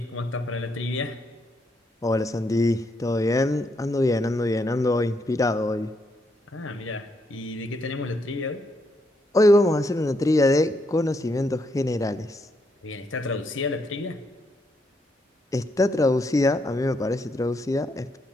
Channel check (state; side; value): normal; both; correlation 0.77